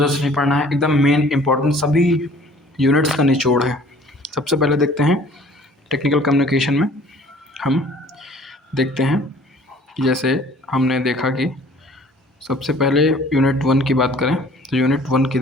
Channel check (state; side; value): normal; both; correlation 0.53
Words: से नहीं पढ़ना है। एकदम मेन इंपॉर्टेंट सभी यूनिट्स का निचोड़ है। सबसे पहले देखते हैं टेक्निकल कम्युनिकेशन में हम देखते हैं कि जैसे हमने देखा कि सबसे पहले यूनिट 1 की बात करें तो यूनिट 1 की